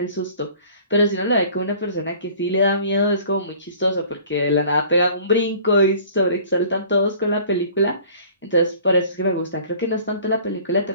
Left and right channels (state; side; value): inverted; both; correlation -0.49